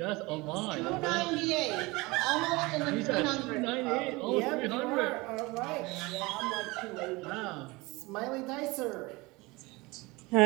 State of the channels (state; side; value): quieter; left; 23.3 dB